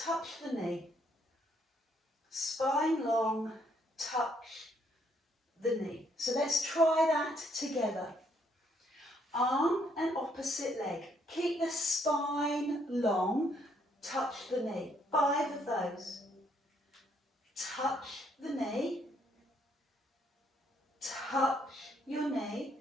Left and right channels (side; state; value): both; normal; correlation 0.70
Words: the knee. Spine long, touch the knee. So let's try that together. Arm and opposite leg. Keep the spine long, touch the knee. 5 of those. Touch the knee. Touch your knee.